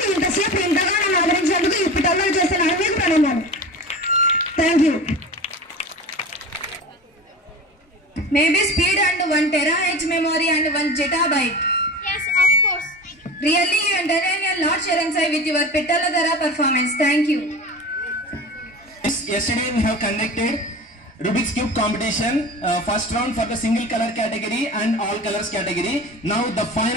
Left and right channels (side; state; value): both; normal; correlation 0.33